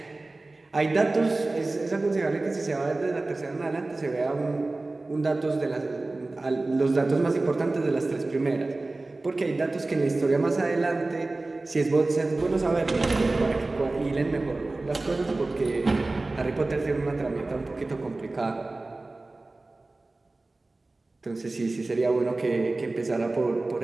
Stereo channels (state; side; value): quieter; left; 3.1 dB